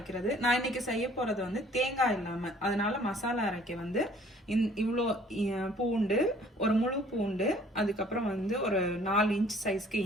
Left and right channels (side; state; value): both; normal; correlation 0.56